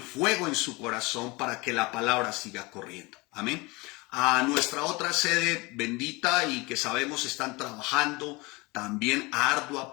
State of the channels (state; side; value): quieter; right; 24.8 dB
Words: fuego en su corazón para que la palabra siga corriendo. Amén. A nuestra otra sede bendita y que sabemos están trabajando también ardua,